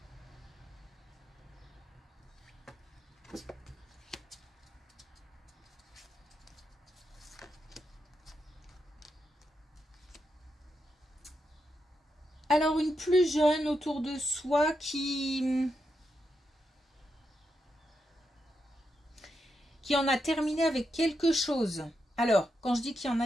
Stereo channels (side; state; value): both; normal; correlation 0.85